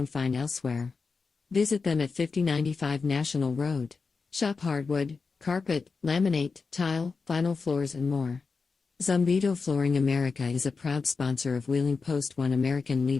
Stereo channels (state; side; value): quieter; right; 4.7 dB